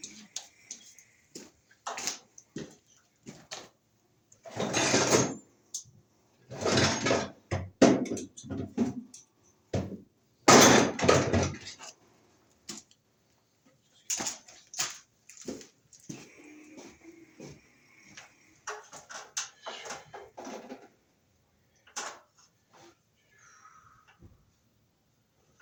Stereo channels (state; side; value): identical; both; correlation 1.00